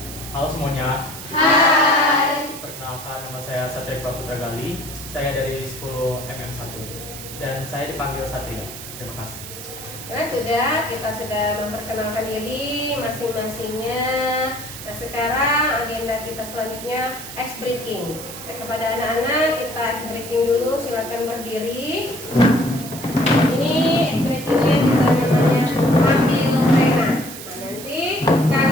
Halo semuanya. Hai. Perkenalkan nama saya Satria Putra Gali. Saya dari 10 MM1 dan saya dipanggil Satria. Terima kasih. Nah, kita sudah memperkenalkan diri masing-masingnya. Nah, sekarang agenda kita selanjutnya ice breaking. Nah, kepada anak-anak kita ice breaking dulu, silakan berdiri. Ini ice breakingnya kita namanya ambil pena. Nah, nanti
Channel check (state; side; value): noise; right; hiss, 11 dB below the sound